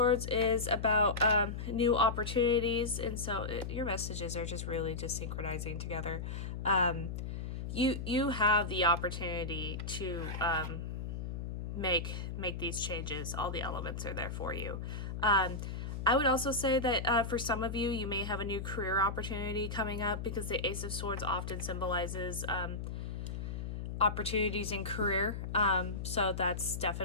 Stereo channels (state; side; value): noise; left; hum, 5 dB below the sound